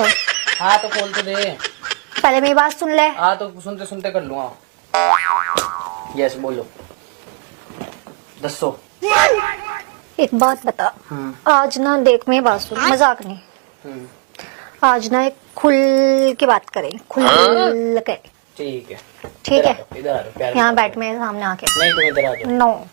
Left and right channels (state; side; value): quieter; left; 34.5 dB